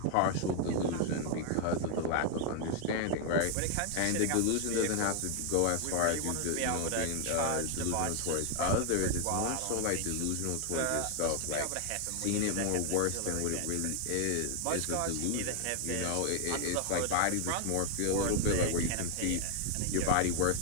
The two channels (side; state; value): both; different; correlation 0.00